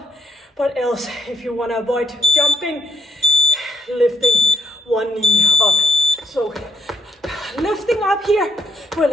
but else if you want to avoid jumping, lifting one knee up. So lifting up here,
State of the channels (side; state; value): both; normal; correlation 0.72